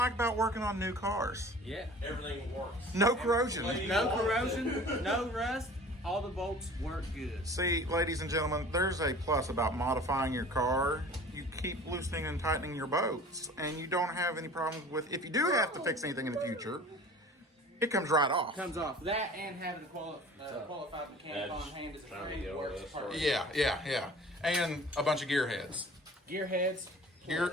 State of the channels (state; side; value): normal; both; correlation 0.44